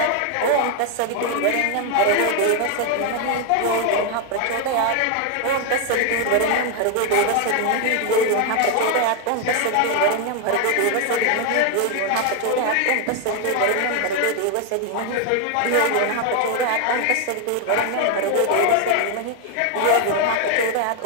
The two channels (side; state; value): both; different; correlation 0.01